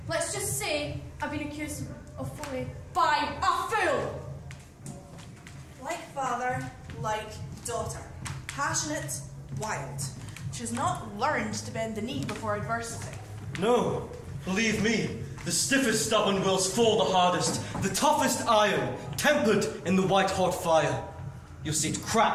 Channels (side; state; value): both; identical; correlation 1.00